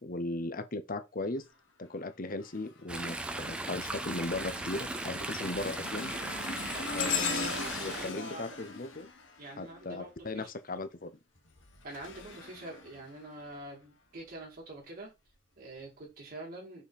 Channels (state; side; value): normal; both; correlation 0.27